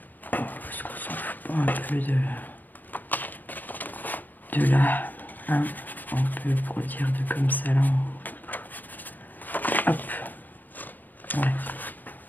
De là, hein, on peut produire de comme ça là. Hop, ouais.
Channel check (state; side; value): late; right; 0.087 ms